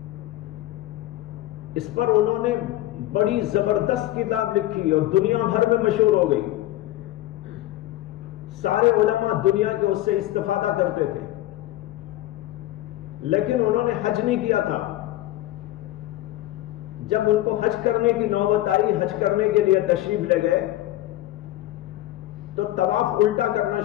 اس پر انہوں نے بڑی زبردست کتاب لکھی اور دنیا بھر میں مشہور ہو گئی، سارے علماء دنیا کے اس سے استفادہ کرتے تھے، لیکن انہوں نے حج نہیں کیا تھا، جب ان کو حج کرنے کی نوبت آئی، حج کرنے کے لیے تشریف لے گئے تو طواف الٹا کرنا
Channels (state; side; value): quieter; right; 15.4 dB